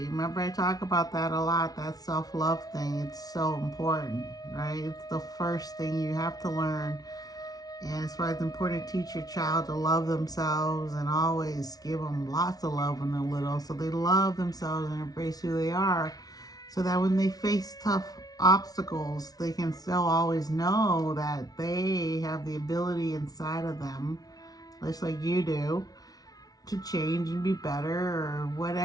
I talk about that a lot, that self-love thing. It's so important, right? It's the first thing you have to learn. And it's why it's important to teach your child to love themselves and always give them lots of love when they're little, so they love themselves and embrace who they are, so that when they face tough obstacles, they can still always know that they have the ability inside of them, just like you do, to change and be better, or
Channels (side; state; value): right; late; 0.18 ms